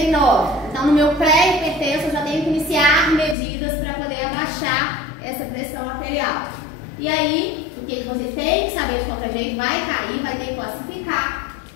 Então, no meu pré-hipertenso, eu já tenho que iniciar medidas para poder abaixar essa pressão arterial. E aí, o que vocês têm que saber de qualquer jeito? Vai cair, vai ter que classificar.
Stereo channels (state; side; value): drops out; right; at 3.4 s